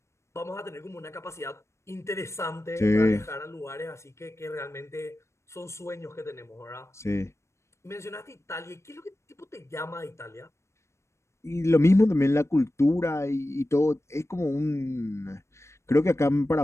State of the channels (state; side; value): late; right; 0.13 ms